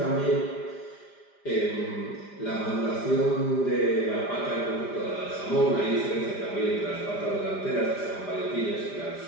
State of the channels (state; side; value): late; right; 5.0 ms